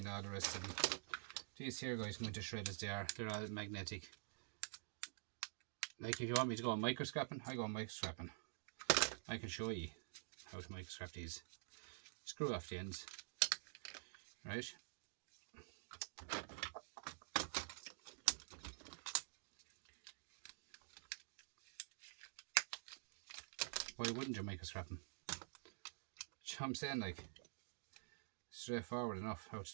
all the rest of them. These here guys come into shred as they are, they're all magnetic. Like if you want me to go microscrapping, I go microscrapping. I can show you how to microscrap these. Screw off the ends, right? Why wouldn't you microscrap them? You know what I'm saying, like, straightforward enough how to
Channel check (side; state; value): left; silent; digital silence